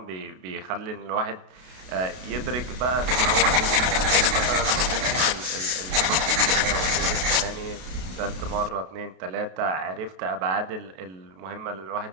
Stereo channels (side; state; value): left; late; 32 ms